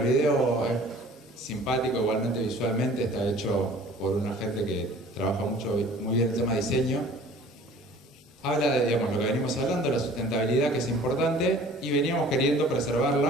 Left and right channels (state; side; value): normal; both; correlation 0.49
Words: video es simpático, igualmente visualmente, está hecho por una gente que trabaja muy bien el tema de diseño. Habla de, digamos, lo que venimos hablando, la sustentabilidad, que es importante, y veníamos queriendo